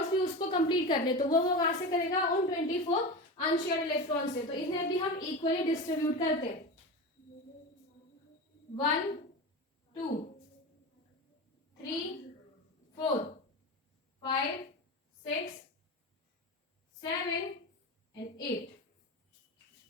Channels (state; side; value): normal; both; correlation 0.25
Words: भी उसको कंप्लीट करने, तो वो कहां से करेगा, उन 24 अनशेयर्ड इलेक्ट्रॉन से। तो इन्हें भी हम इक्वली डिस्ट्रीब्यूट करते हैं, 1 2 3 4 5 6 7 एंड 8,